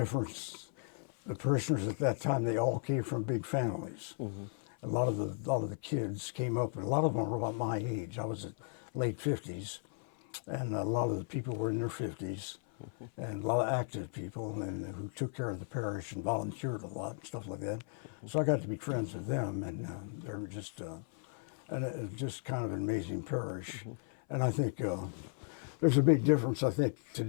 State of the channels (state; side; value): silent; right; 54 dB below the other